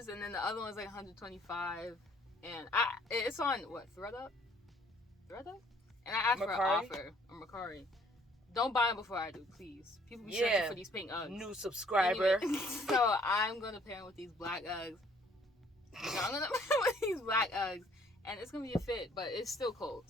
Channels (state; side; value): normal; both; correlation 0.61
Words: and then the other one's like $125, and it's on what, ThredUp? And I asked for an offer on Mercari. Don't buy them before I do, please. People be searching for these pink Uggs. New subscriber. Anyway, so I'm gonna pair them with these black Uggs. I'm gonna pair with these black Uggs, and it's gonna be a fit, but it's still cold,